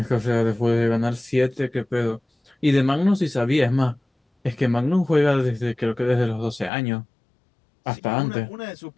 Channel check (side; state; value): right; drops out; at 6.7 s